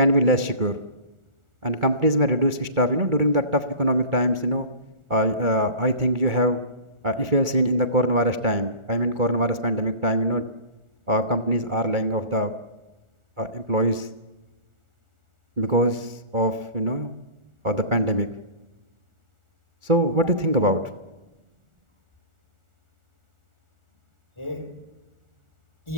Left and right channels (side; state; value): left; late; 1.4 ms